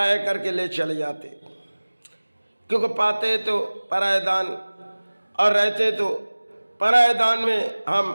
करके ले चले जाते, क्योंकि पाते तो परायदान और रहते तो परायदान में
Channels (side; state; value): both; inverted; correlation -1.00